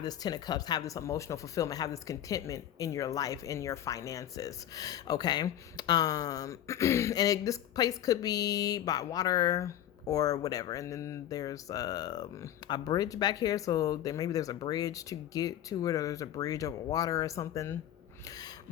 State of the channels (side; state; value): right; quieter; 11.4 dB